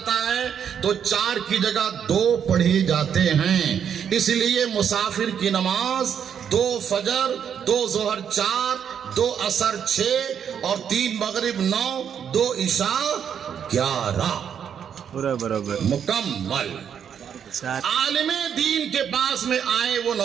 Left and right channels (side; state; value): left; quieter; 8.2 dB